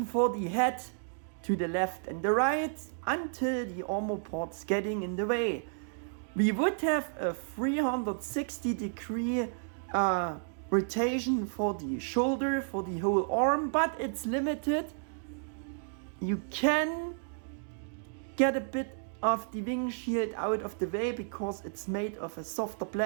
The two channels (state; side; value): silent; left; digital silence